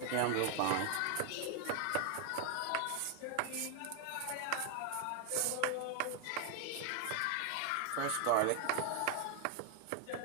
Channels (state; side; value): different; both; correlation 0.00